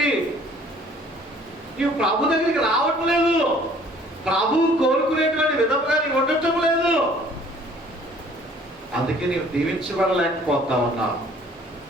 నీవు ప్రభు దగ్గరికి రావట్లేదు. ప్రభువు కోరుకునేటువంటి విధంగా నీవు ఉండటం లేదు. అందుకే నీవు దీవించబడలేకపోతా ఉన్నావు.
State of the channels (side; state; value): both; normal; correlation 0.55